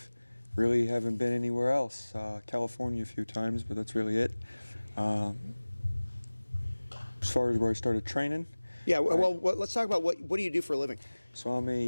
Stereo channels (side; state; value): both; inverted; correlation -1.00